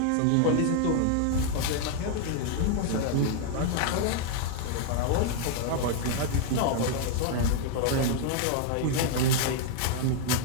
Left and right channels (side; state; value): both; different; correlation 0.00